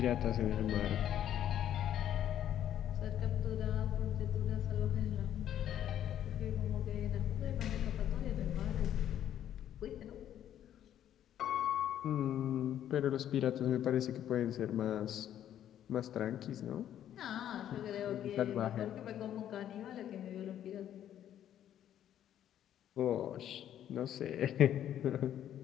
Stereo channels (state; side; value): quieter; right; 10.8 dB